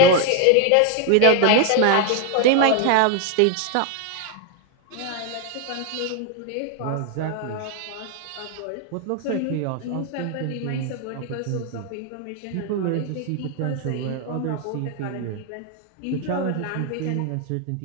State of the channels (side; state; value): both; different; correlation 0.01